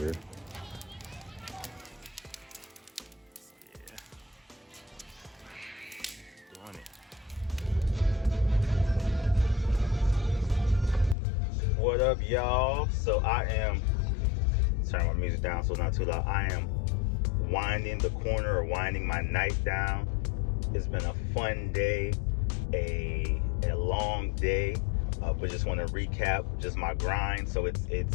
What up, y'all? So I am turn my music down so it's not too loud. I am winding the corner or winding my night down. It's been a fun day, a long day, but just want to recap just my grind. So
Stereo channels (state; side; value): drops out; right; at 11.2 s